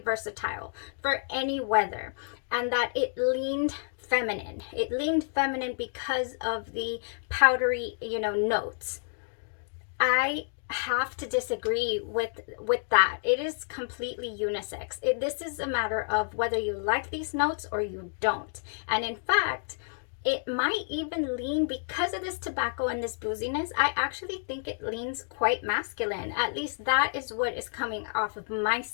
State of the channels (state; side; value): silent; right; digital silence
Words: for any weather, and that it leaned feminine. It leaned feminine because of the powdery, you know, notes. I have to disagree with that. It is completely unisex. This is a matter of whether you like these notes or you don't. And in fact, it might even lean, because of this tobacco and this booziness, I actually think it leans quite masculine. At least that is what is coming off of my